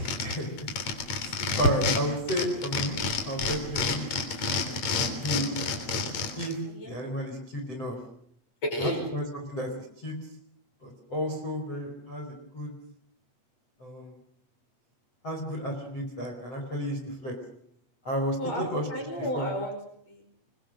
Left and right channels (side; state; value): right; late; 8.6 ms